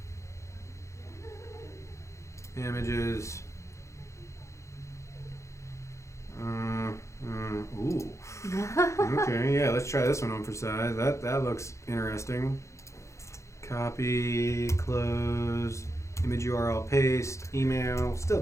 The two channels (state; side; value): late; right; 0.14 ms